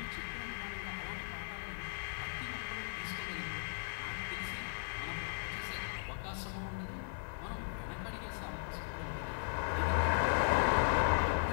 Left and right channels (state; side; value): silent; right; digital silence